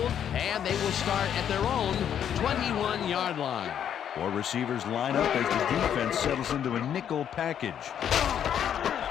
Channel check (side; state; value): right; quieter; 9.2 dB